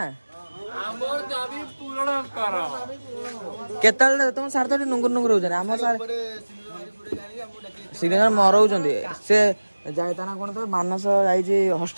हमर दाबी पूर्ण कर केतल तुम सार तो नुंगुर नुंगुर हो जाने हम सार सिग्नेचर मरौଛନ୍ତି से जाय ता ना कोन तो मानस जाई छी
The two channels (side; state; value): both; inverted; correlation -1.00